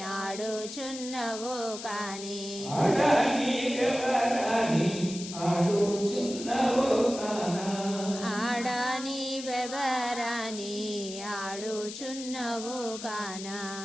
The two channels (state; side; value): noise; left; hiss, 10 dB below the sound